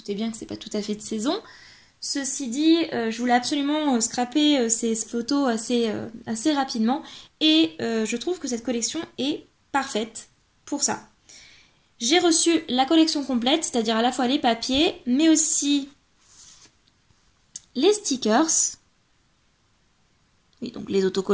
bien que c'est pas tout à fait de saison. Ceci dit, je voulais absolument scraper ces photos assez rapidement. Et je trouve que cette collection est parfaite pour ça. J'ai reçu la collection complète, c'est-à-dire à la fois les papiers, mais aussi les stickers. Oui, donc les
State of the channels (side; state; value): both; identical; correlation 1.00